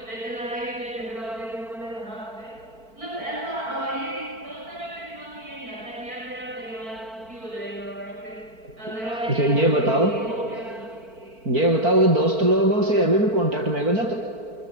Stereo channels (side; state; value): left; late; 4.5 ms